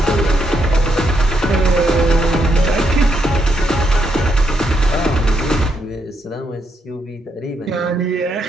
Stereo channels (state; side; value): normal; both; correlation 0.78